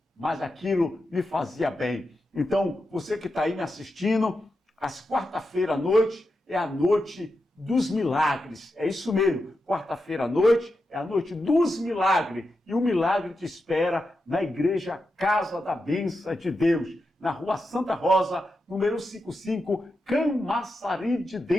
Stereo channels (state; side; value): normal; both; correlation 0.88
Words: mas aquilo me fazia bem. Então, você que está aí me assistindo, às quarta-feira à noite é a noite dos milagres. É isso mesmo, quarta-feira à noite é a noite dos milagres. E o milagre te espera na igreja Casa da Bênção de Deus, na Rua Santa Rosa, número 55, Camaçari de